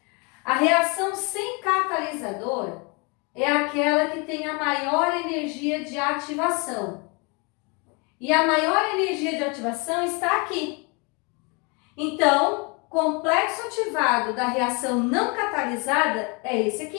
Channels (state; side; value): quieter; right; 31.0 dB